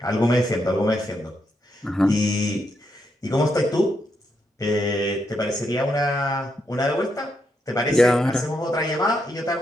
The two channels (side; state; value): both; normal; correlation 0.80